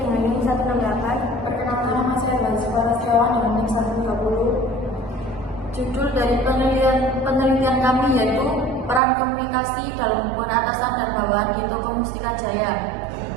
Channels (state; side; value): drops out; left; at 9.0 s